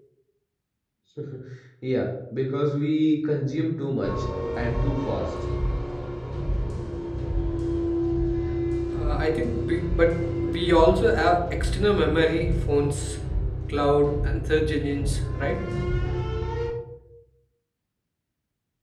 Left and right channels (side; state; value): both; identical; correlation 1.00